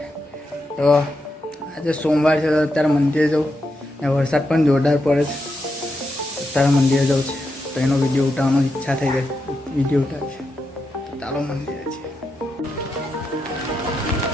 તો આજે સોમવાર છે તો અત્યારે મંદિરે જવું ને વરસાદ પણ જોરદાર પડે છે. અત્યારે મંદિરે જવું છે તો એનો વિડીયો ઉતારવાની ઈચ્છા થઈ ગઈ. વિડીયો ઉતાર છે ચાલો મંદિરે છે.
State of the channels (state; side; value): normal; both; correlation 0.85